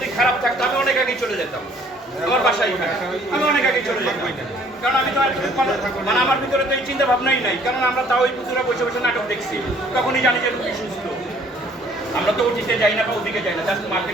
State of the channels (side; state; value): both; normal; correlation 0.59